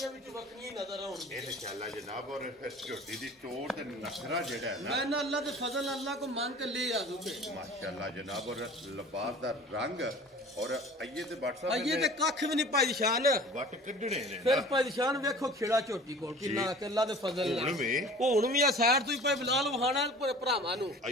ਵਿੱਚ ਵੱਖਰੀਆਂ ਹੀ ਨਜ਼ਰ ਆਉਣਗੀਆਂ ਇਨਸ਼ਾਅੱਲਾ ਜਨਾਬ ਔਰ ਫਿਰ ਝੋਟੀ ਦੀ ਟੋਰ ਤੇ ਨਖਰਾ ਜਿਹੜਾ ਹੈ ਨਾ ਮੈਂ ਨਾ ਅੱਲਾ ਦੇ ਫਜ਼ਲ ਅੱਲਾ को मांग के ले आ दूंगे माशाअल्लाह जनाब और लिबास दा रंग और आइए ते WhatsApp ये ते कख भी नहीं पाई शान वट कढणे ने फिर पाई शान वेखो खेड़ा झोटी कोल किन्ना के अल्लाह दे फजल ਹੁਣ ਵੀ ਹੁਣ ਵੀ ਆ ਸਾਈਡ ਤੋਂ ਹੀ ਪਈ ਬਲਾਲ ਵਹਾਣਾ ਭਰਾਵਾਂ ਨੂੰ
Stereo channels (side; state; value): both; normal; correlation 0.44